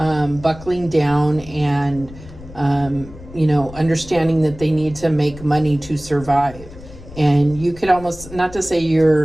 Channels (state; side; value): noise; left; rumble, 17 dB below the sound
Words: down and, understanding that they need to make money to survive. And you could almost, not to say